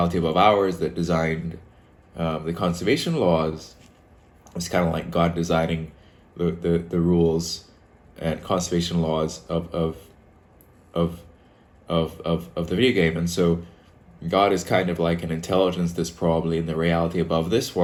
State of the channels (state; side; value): identical; both; correlation 1.00